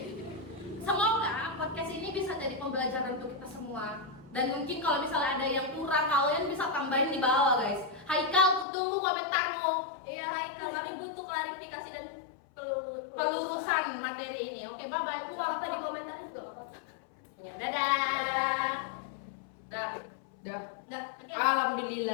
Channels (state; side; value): drops out; right; at 8.7 s